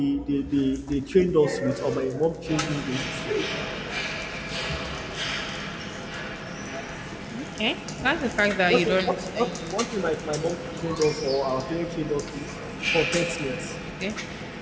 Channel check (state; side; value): identical; both; correlation 1.00